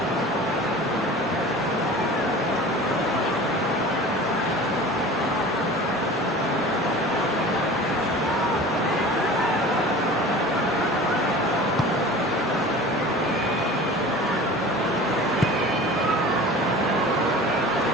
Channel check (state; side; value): normal; both; correlation 0.39